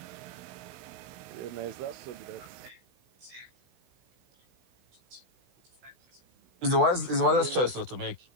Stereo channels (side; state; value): left; late; 16 ms